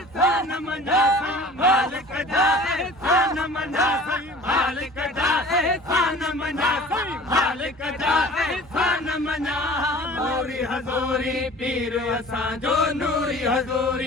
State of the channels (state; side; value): normal; both; correlation 0.44